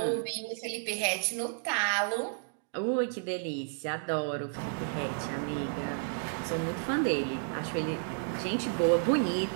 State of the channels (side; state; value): left; silent; digital silence